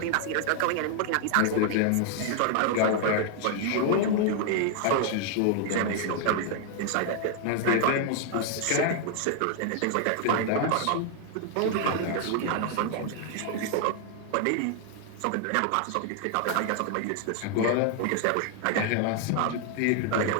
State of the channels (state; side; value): different; both; correlation 0.00